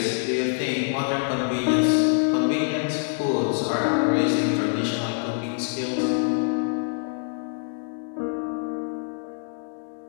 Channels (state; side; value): silent; right; digital silence